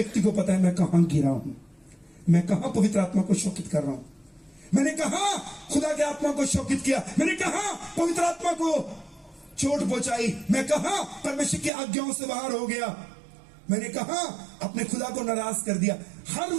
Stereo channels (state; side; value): drops out; left; at 11.7 s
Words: को पता है मैं कहां गिरा हूं, मैं कहां पवित्र आत्मा को शोकित कर रहा हूं, मैंने कहा खुदा के आत्मा को शोकित किया, मैंने कहा पवित्र आत्मा को चोट पहुंचाई, मैं कहा परमेश्वर की आज्ञाओं से बाहर हो गया, मैंने कहा अपने खुदा को नाराज कर दिया। हर